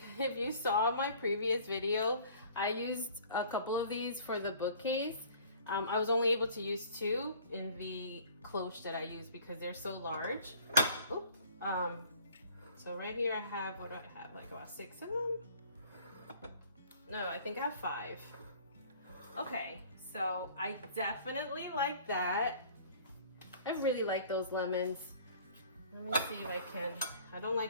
If you saw my previous video, I used a couple of these for the bookcase. I was only able to use 2 in the cloche that I use because they're so large. Oop. So right here I have, what do I have? Like about 6 of them? No, I think I have 5. Okay, so I definitely like that. I really like those lemons. Let me see if I can. I don't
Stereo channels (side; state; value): both; inverted; correlation -0.51